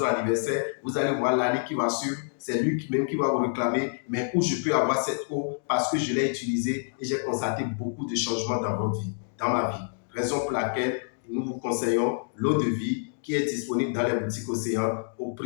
anniversaire. Vous allez voir l'année qui va suivre. C'est lui même qui va vous réclamer. Mais où je peux avoir cette eau parce que je l'ai utilisée et j'ai constaté beaucoup de changements dans votre vie, dans ma vie. Raison pour laquelle nous vous conseillons l'eau de vie qui est disponible dans les boutiques Océan au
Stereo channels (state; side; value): silent; right; digital silence